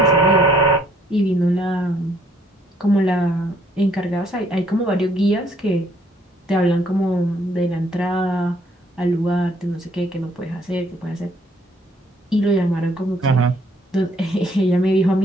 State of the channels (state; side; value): normal; both; correlation 0.65